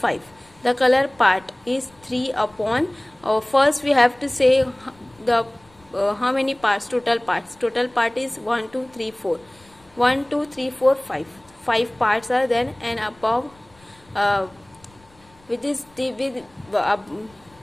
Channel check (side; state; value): left; noise; rumble, 29 dB below the sound